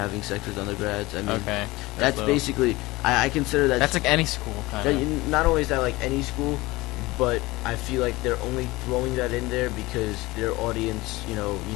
sex with undergrads. I mean, Okay. that's little- basically. I consider that. That's like any school kind of. Not only is that like any school, but I feel like they're only throwing that in there because their audience,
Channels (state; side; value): quieter; right; 20.7 dB